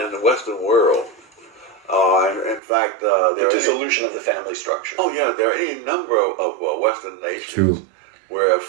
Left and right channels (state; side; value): drops out; left; at 2.6 s